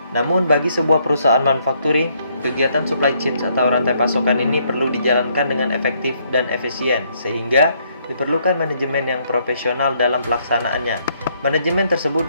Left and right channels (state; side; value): inverted; both; correlation -0.70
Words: Namun bagi sebuah perusahaan manufacturing, kegiatan supply chain atau rantai pasokan ini perlu dijalankan dengan efektif dan efisien, sehingga diperlukan manajemen yang profesional dalam pelaksanaannya. Manajemen tersebut